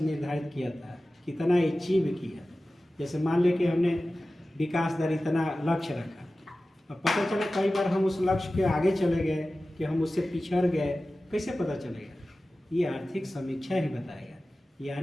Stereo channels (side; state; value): both; normal; correlation 0.96